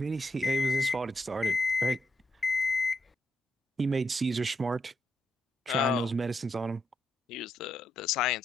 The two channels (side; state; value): both; normal; correlation 0.80